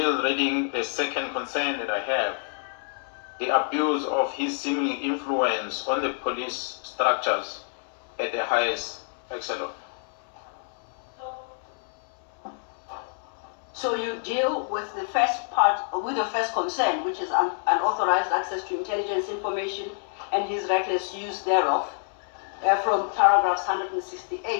reading the second concern that I have. The abuse of his seeming influence on the police structures at the highest echelon. So you deal with the first part, with the first concern, which is unauthorized access to intelligence information and his reckless use thereof, from paragraphs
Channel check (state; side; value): silent; right; 60 dB below the other